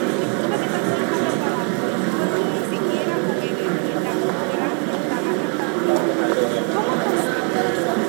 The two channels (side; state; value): left; quieter; 34.6 dB